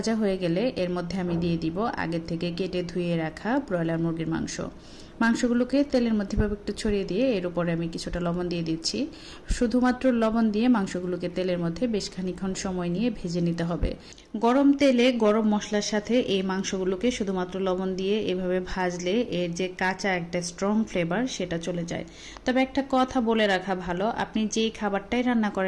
হয়ে গেলে এর মধ্যে আমি দিয়ে দিব আগের থেকে কেটে ধুয়ে রাখা ব্রয়লার মুরগির মাংসগুলোকে তেলের মধ্যে ভাবে একটু ছড়িয়ে দিয়ে এর উপরে আমি কিছুটা লবণ দিয়ে দিচ্ছি। শুধুমাত্র লবণ দিয়ে মাংসগুলোকে তেলের মধ্যে বেশ খানিকক্ষণ সময় নিয়ে ভেজে নিতে হবে। গরম তেলে গরম মশলার সাথে এই মাংসগুলোকে শুধুমাত্র লবণ দিয়ে এভাবে ভাজলে এর যে কাঁচা একটা স্ট্রং ফ্লেভার সেটা চলে যায়। তবে একটা কথা বলে রাখা ভালো, আপনি যেই খাবারটাই রান্না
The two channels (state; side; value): identical; both; correlation 1.00